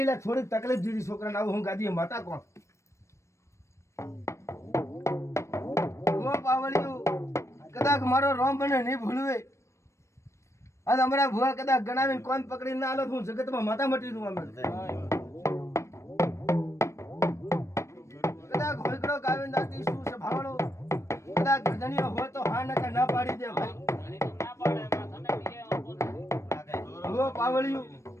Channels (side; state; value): right; late; 0.14 ms